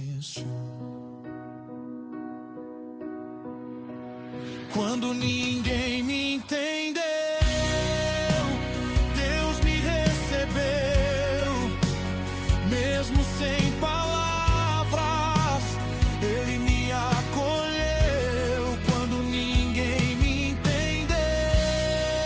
quando ninguém me entendeu, Deus me recebeu. Mesmo sem palavras, Ele me acolheu. Quando ninguém me entendeu,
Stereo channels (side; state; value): both; identical; correlation 1.00